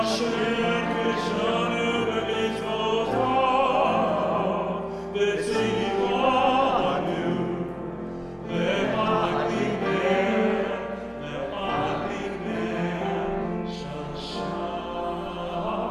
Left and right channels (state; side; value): identical; both; correlation 1.00